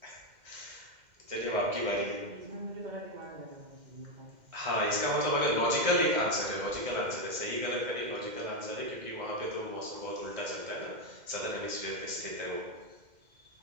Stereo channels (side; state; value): left; late; 2.1 ms